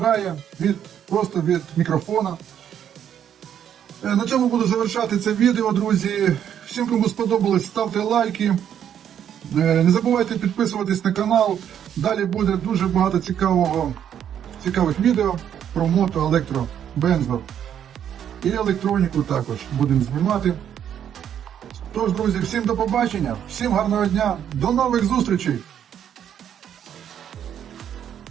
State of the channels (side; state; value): left; quieter; 9.4 dB